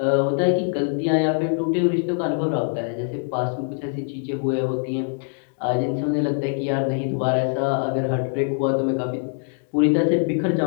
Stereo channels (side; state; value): right; silent; 63 dB below the other